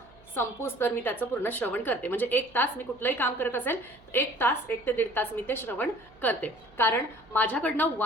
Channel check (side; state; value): right; noise; hum, 26 dB below the sound